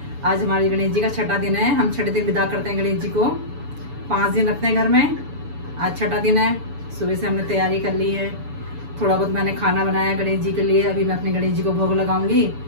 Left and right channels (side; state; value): left; late; 7.0 ms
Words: आज हमारे गणेश जी का छठा दिन है, हम छठे दिन विदा करते हैं गणेश जी को। 5 दिन रखते हैं घर में, आज छठा दिन है। सुबह से हमने तैयारी कर ली है, थोड़ा बहुत मैंने खाना बनाया गणेश जी के लिए। अभी मैं अपने गणेश जी को भोग लगाऊंगी